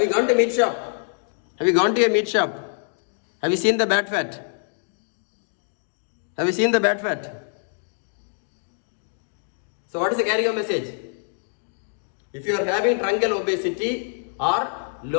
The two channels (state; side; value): silent; right; digital silence